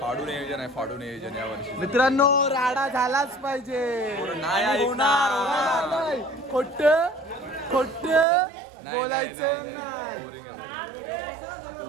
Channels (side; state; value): left; drops out; at 8.2 s